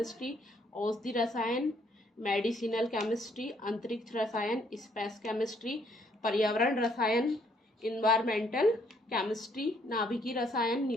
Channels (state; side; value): normal; both; correlation 0.68